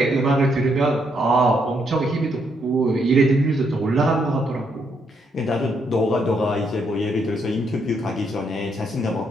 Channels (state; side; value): normal; both; correlation 0.75